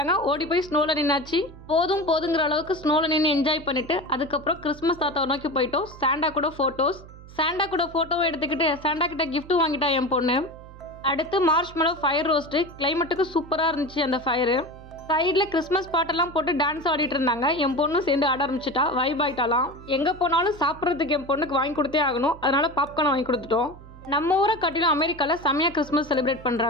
ஓடி போய் ஸ்னோவில் நின்னாச்சு. போதுங்கிற அளவுக்கு ஸ்னோவில் நின்று என்ஜாய் பண்ணிவிட்டு அதுக்கப்புறம் கிறிஸ்மஸ் தாத்தாவை நோக்கி போயிட்டோம். சாண்டா கூட ஃபோட்டோவும் எடுத்துக்கிட்டு சாண்டா கிட்ட கிஃப்ட்டும் வாங்கிட்டா என் பொண்ணு. அடுத்து மார்ஷ்மெலோ ஃபயர் ரோஸ்ட்டு. கிளைமேட்டுக்கு சூப்பராக இருந்துச்சு அந்த ஃபயரு. சைடில் கிறிஸ்மஸ் பாட்டெல்லாம் போட்டு டான்ஸ் ஆடிட்டு இருந்தாங்க. என் பொண்ணும் சேர்ந்து ஆட ஆரம்பிச்சிட்டா, வைப் ஆகிட்டாலாம். எங்கே போனாலும் சாப்பிட்றதுக்கு என் பொண்ணுக்கு வாங்கி கொடுத்தே ஆகணும், அதனால பாப்கார்ன் வாங்கி கொடுத்துட்டோம். நம்ம ஊரை காட்டிலும் அமெரிக்காவில் செம்மையாக கிறிஸ்மஸ் செலிப்ரேட்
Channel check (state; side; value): noise; right; hum, 18 dB below the sound